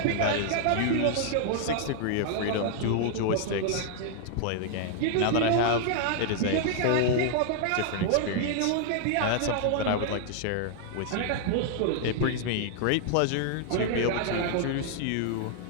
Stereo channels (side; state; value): both; different; correlation -0.01